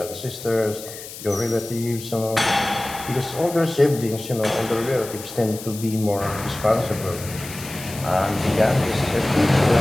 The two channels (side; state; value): left; noise; hiss, 13 dB below the sound